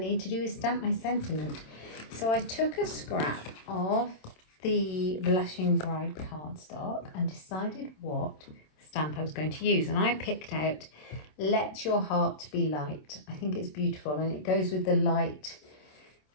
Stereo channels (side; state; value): right; late; 27 ms